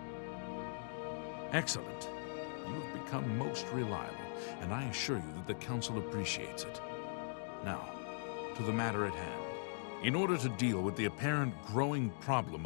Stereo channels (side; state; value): right; silent; digital silence